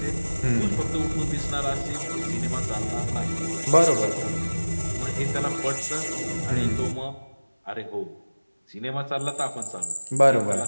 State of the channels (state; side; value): inverted; both; correlation -1.00